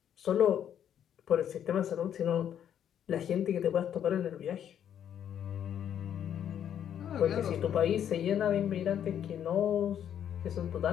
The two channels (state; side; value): quieter; right; 9.6 dB